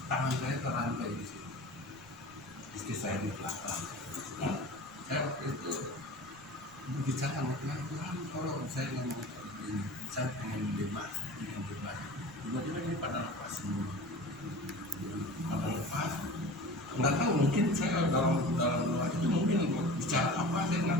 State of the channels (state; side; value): noise; right; rumble, 24 dB below the sound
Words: Tangan saya terantai di sini, istri saya di belakang. Nah, saya waktu itu bicara sama Tuhan, kalau saya nggak mau ini, saya pengen bebas. Tiba-tiba ini pada lepas semua, nggak tahu, mungkin saya dalam doa itu mungkin bicara apa saya